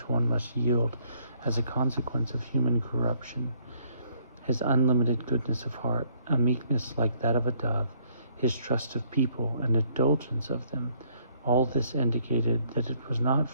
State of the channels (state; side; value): inverted; both; correlation -0.66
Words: one must yield as a consequence of human corruption. His unlimited goodness of heart, a meekness like that of a dove, his trust of people and indulgence of them, all this indicated that it was not